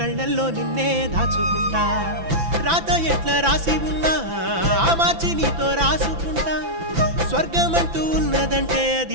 నిన్నే దాచుకుంటా రాత ఎట్లా రాసి ఉన్నా మార్చి నీతో రాసుకుంటా స్వర్గమంటూ ఉన్నదంటే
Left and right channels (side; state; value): left; late; 5.9 ms